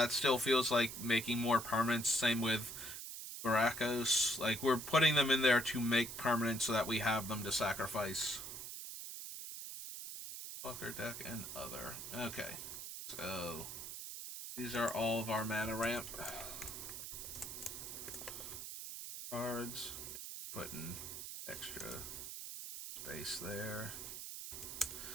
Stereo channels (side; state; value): right; noise; hiss, 8 dB below the sound